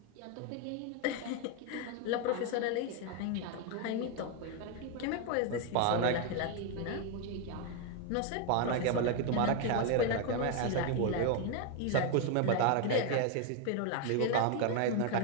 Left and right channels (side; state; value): both; different; correlation 0.01